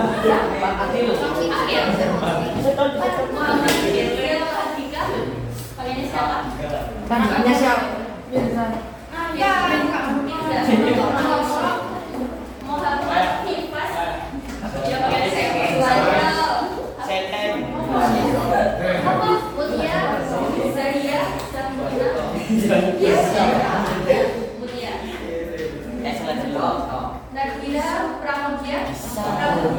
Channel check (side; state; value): both; identical; correlation 1.00